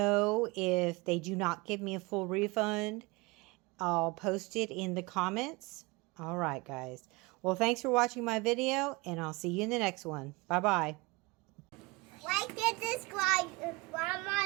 if they do not give me a full refund. I'll post it in the comments. All right, guys. Well, thanks for watching my video, and I'll see you in the next one. Bye-bye. Like and subscribe to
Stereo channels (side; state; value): left; quieter; 24.5 dB